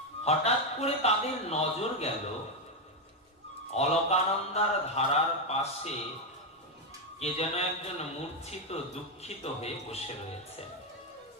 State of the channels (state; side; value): normal; both; correlation 0.06